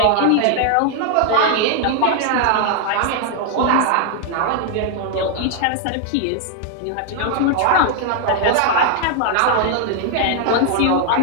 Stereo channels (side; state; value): both; different; correlation 0.00